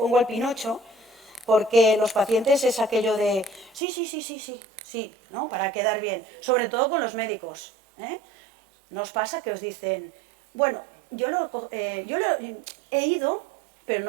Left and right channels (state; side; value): drops out; left; at 3.8 s